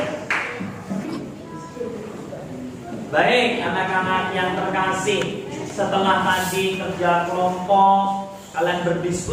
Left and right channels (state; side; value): identical; both; correlation 1.00